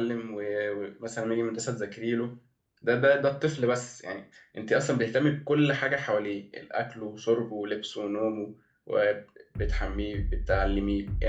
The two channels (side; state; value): both; identical; correlation 1.00